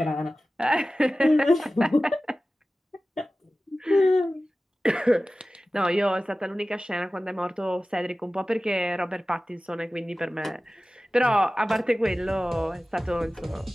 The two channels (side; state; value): both; normal; correlation 0.96